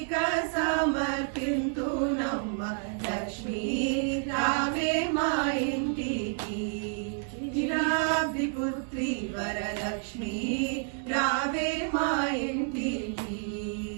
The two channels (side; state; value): left; silent; 58 dB below the other